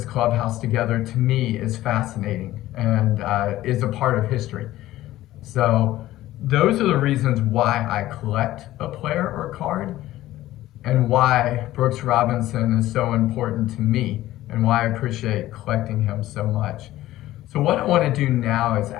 clubhouse together, to me, is fascinating and is a part of history. So those are the reasons why I collect a player or card, and why Brooks Robinson is so important to me, and why I appreciate collecting him so much. So what I want to do now is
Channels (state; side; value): quieter; right; 15.3 dB